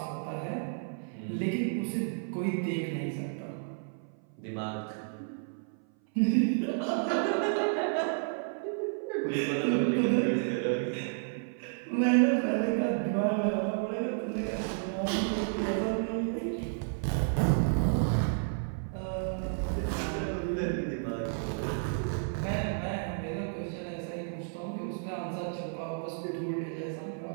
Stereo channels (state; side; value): silent; left; 57 dB below the other